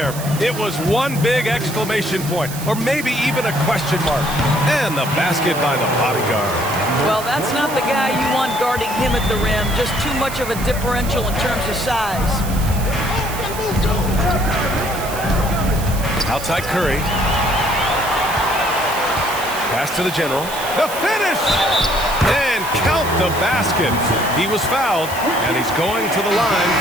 It was one big exclamation point, or maybe even a question mark. And the basket by the bodyguard. Well, that's not the guy you want guarding him at the rim. Just too much of a differential in terms of size. Outside Curry. Pass to the general. The finish! And count the basket. He was fouled, and he's going to the line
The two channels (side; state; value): right; noise; hiss, 11 dB below the sound